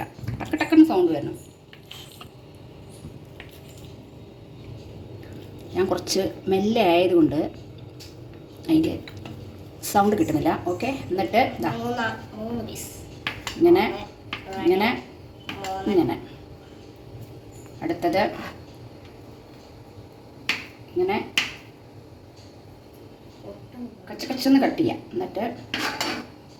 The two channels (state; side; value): identical; both; correlation 1.00